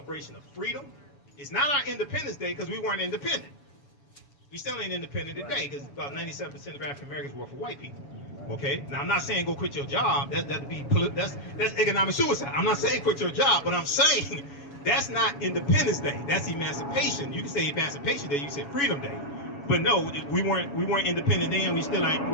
of freedom. It's not our Independence Day because we weren't independent. We still ain't independent today because about 97% of African Americans work for white people. Okay. Now I'm not saying go quit your job. That's economic suicide. I'm not saying quit your job, but I'm saying that's not Independence Day. That's Emancipation. You can say Emancipation Day. You can say Freedom Day. But no, we weren't independent then. We're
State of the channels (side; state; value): right; late; 7.1 ms